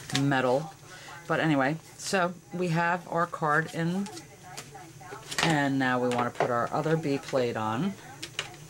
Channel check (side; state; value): both; identical; correlation 1.00